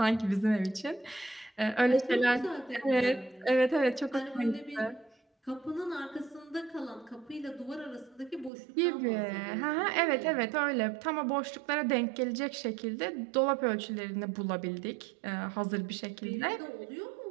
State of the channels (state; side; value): drops out; left; at 8.5 s